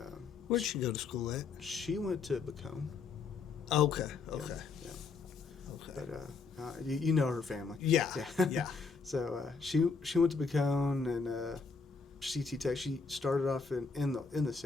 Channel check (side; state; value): right; quieter; 4.7 dB